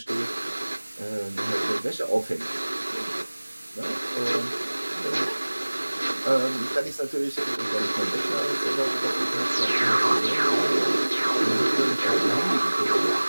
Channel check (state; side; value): inverted; both; correlation -1.00